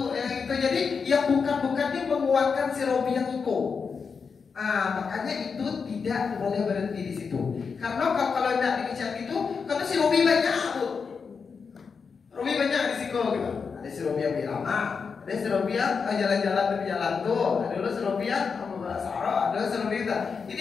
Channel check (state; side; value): quieter; right; 5.6 dB